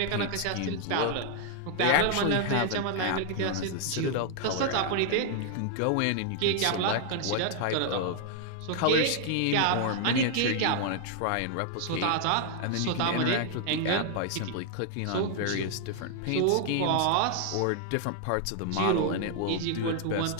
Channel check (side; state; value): both; different; correlation 0.00